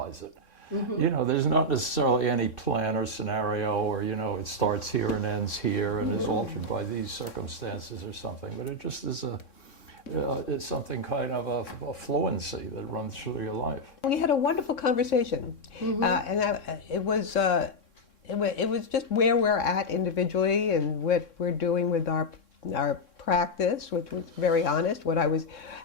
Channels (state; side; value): late; right; 3.6 ms